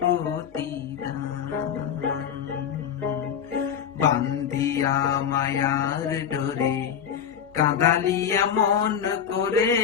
প্রতিদান। বান্ধিয়া মায়ার ডোরে কাঁদালিয়া মন করে,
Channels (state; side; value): quieter; right; 8.2 dB